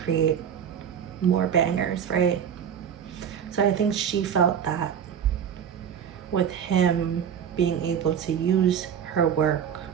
more bangers, right? So I think she felt that with him being able to use her work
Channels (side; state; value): left; quieter; 8.4 dB